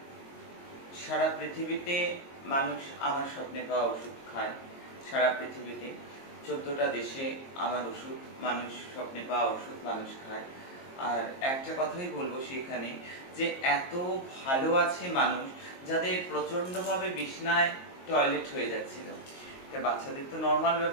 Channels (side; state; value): right; late; 22 ms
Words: সারা পৃথিবীতে মানুষ আমার স্বপ্নে পাওয়া ওষুধ খায়। সারা পৃথিবীতে ১৪টা দেশে আমার ওষুধ, মানুষ স্বপ্নে পাওয়া ওষুধ মানুষ খায়। আর একটা কথাই বলবো সেখানে, যে এত ভালো আছে মানুষ যাদের প্রচন্ডভাবে বিছনায় টয়লেট হয়ে যাচ্ছিল। এটা বাচ্চাদের তো নর্মাল